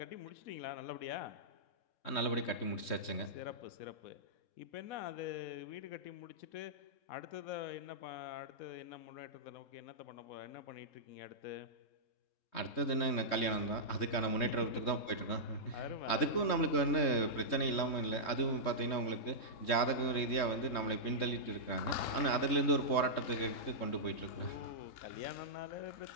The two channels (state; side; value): late; right; 3.1 ms